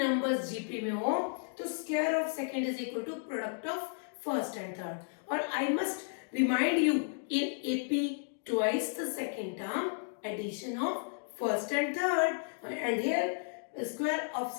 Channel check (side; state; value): right; silent; digital silence